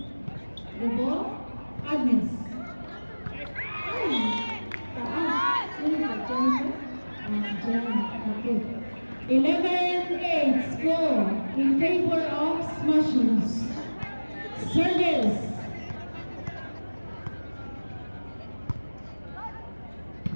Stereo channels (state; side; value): inverted; both; correlation -1.00